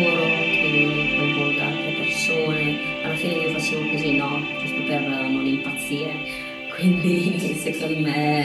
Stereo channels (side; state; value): both; identical; correlation 1.00